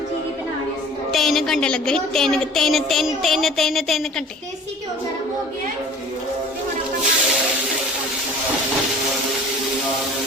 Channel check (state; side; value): normal; both; correlation 0.45